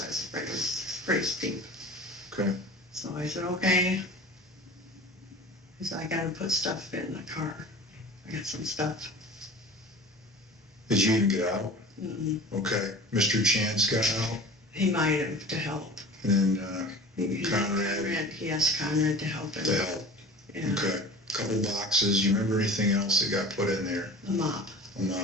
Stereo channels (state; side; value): normal; both; correlation 0.39